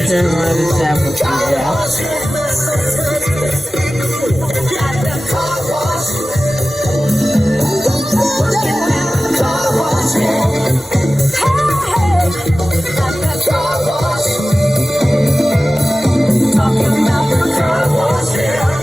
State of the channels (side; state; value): both; normal; correlation 0.96